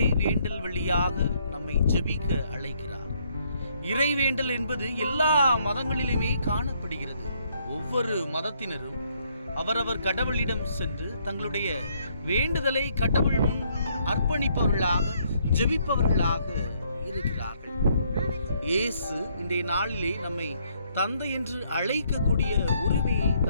வழியாக நம்மை ஜெபிக்க அழைக்கிறார். இறைவேண்டல் என்பது எல்லா மதங்களிலுமே காணப்படுகிறது. ஒவ்வொரு மதத்தினரும் அவரவர் கடவுளிடம் சென்று தங்களுடைய வேண்டுதலை கடவுள் முன் அர்ப்பணிப்பவர்களாக, ஜெபிப்பவர்களாக இருக்கிறார்கள். இயேசு இன்றைய நாளிலே நம்மை தந்தை என்று அழைக்கக்கூடிய உரிமையை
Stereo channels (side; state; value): both; inverted; correlation -0.70